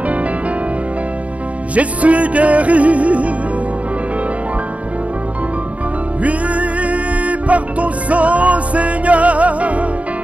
je suis guéri. Oui, par ton sang, Seigneur,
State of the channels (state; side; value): late; left; 0.067 ms